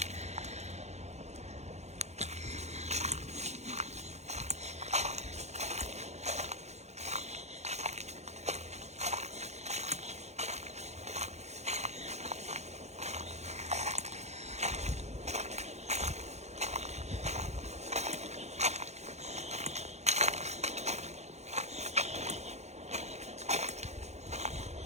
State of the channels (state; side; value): late; left; 0.32 ms